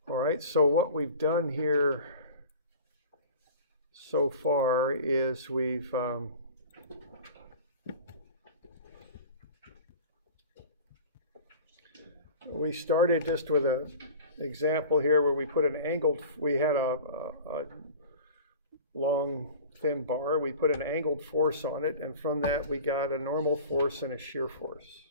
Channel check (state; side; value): inverted; both; correlation -0.39